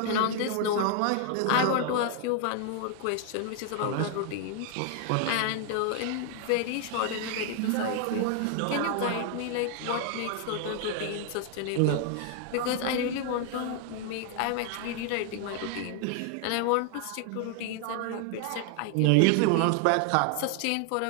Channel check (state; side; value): different; both; correlation 0.00